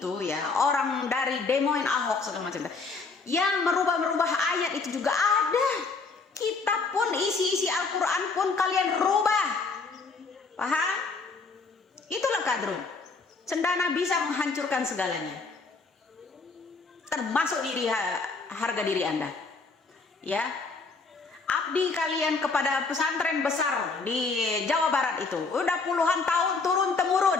ya, orang dari demoin Ahok segala macam yang merubah ayat itu juga ada. Kitab pun, isi Al-Quran pun kalian rubah. Paham? Itulah kadrun. Cendana bisa menghancurkan segalanya, termasuk harga diri Anda. Ya, abdi kalian kepada pesantren besar di Jawa Barat itu udah puluhan tahun turun temurun,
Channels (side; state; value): right; quieter; 4.2 dB